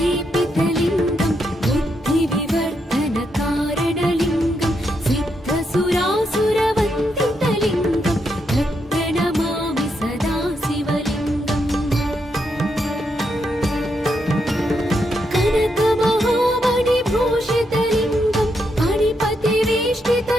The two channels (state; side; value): normal; both; correlation 0.80